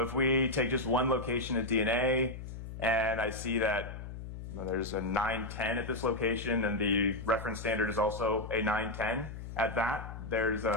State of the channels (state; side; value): noise; left; hum, 10 dB below the sound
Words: if we take just one location of DNA and I see that there's a 910 at this location and the reference standard is also a 910, at that there's